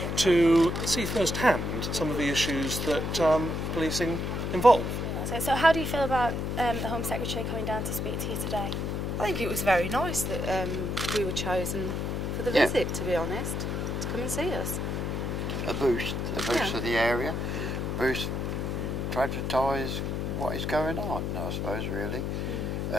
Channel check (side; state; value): left; noise; hum, 1 dB below the sound